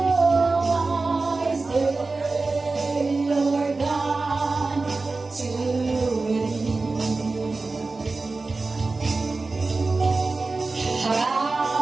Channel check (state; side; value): quieter; left; 3.7 dB